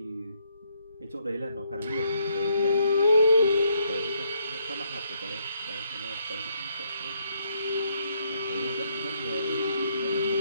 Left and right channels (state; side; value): inverted; both; correlation -0.73